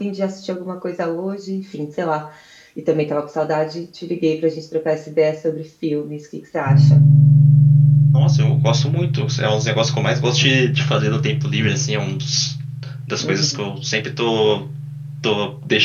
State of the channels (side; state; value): both; identical; correlation 1.00